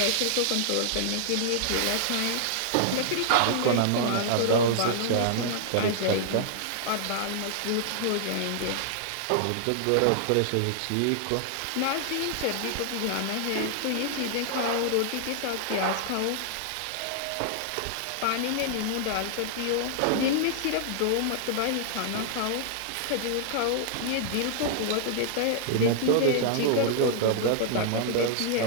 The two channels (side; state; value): both; different; correlation -0.01